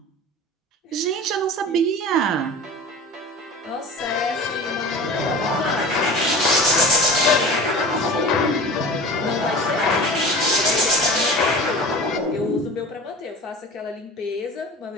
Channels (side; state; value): both; normal; correlation 0.37